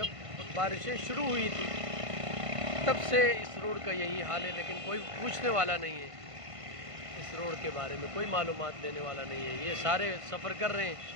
बारिशें शुरू हुई थी तब से इस रोड का यही हाल है, लेकिन कोई पूछने वाला नहीं है इस रोड के बारे में, कोई मालूमात देने वाला नहीं है। ये सारे सफ़र कर रहे हैं,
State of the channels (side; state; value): left; late; 1.5 ms